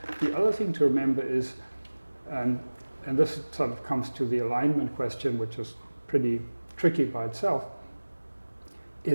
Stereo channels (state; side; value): inverted; both; correlation -1.00